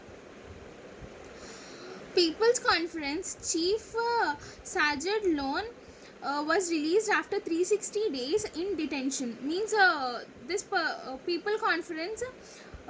People's Conference Chief Sajid Lone was released after 360 days in detention. Means this People Conference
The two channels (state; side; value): identical; both; correlation 1.00